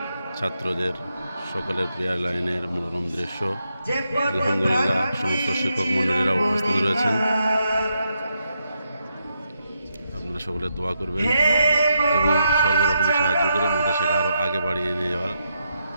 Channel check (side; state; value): both; inverted; correlation -0.82